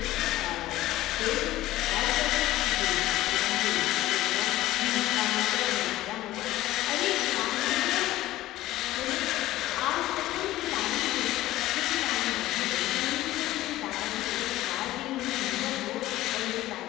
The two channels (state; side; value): quieter; right; 15.8 dB